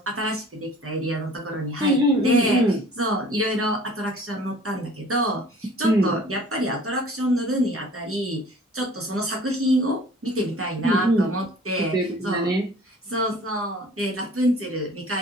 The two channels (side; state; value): both; normal; correlation 0.48